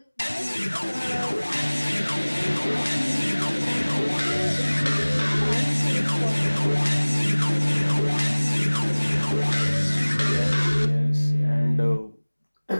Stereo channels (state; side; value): inverted; both; correlation -1.00